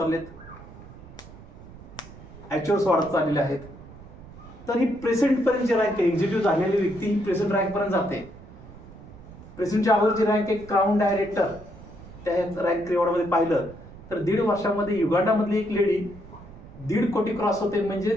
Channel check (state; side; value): noise; right; rumble, 18 dB below the sound